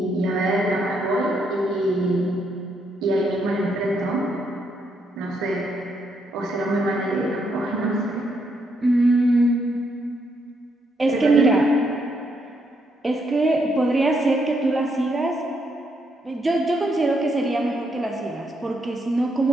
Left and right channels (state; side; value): normal; both; correlation 0.76